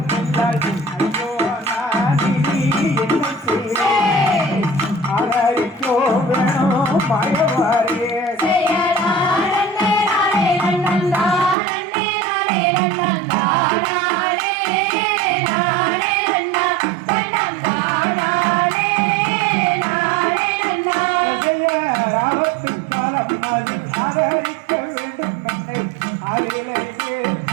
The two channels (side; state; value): left; drops out; at 11.6 s